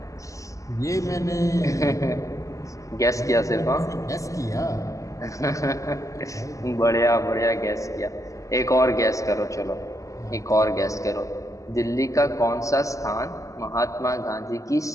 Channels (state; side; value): late; right; 0.16 ms